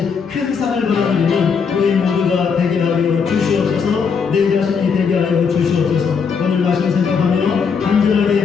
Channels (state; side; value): quieter; right; 6.0 dB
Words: 큰 상을 받아들이는 우리 모두가 되게 하여 주시옵소서. 내 자신이 되게 하여 주시옵소서. 오늘 말씀 생각하며